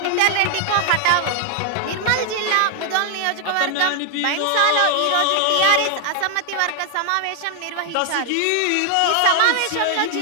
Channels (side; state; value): both; different; correlation 0.00